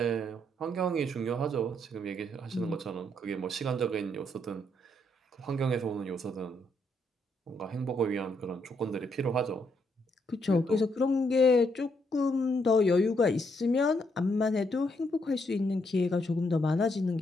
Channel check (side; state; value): both; normal; correlation 0.75